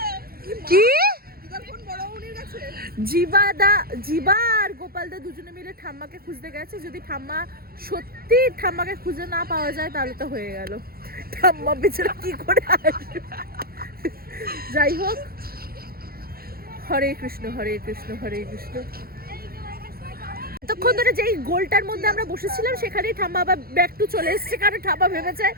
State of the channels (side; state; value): left; late; 0.44 ms